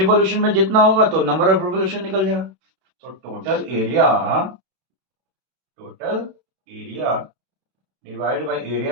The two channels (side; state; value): left; late; 32 ms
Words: में जितना होगा तो नंबर ऑफ रिवोल्यूशन निकल जाएगा। तो total area divided by